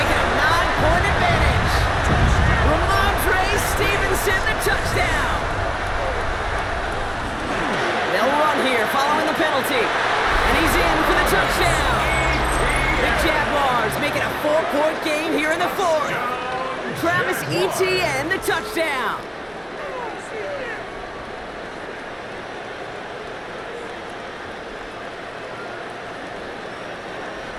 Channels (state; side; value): identical; both; correlation 1.00